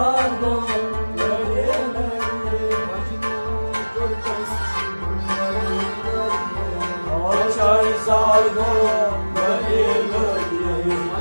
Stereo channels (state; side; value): inverted; both; correlation -1.00